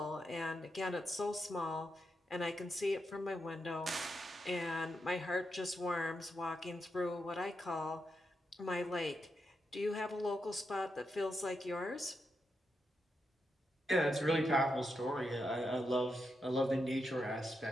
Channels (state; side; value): normal; both; correlation 0.85